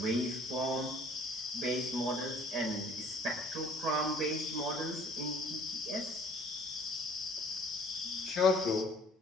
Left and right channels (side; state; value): both; normal; correlation 0.54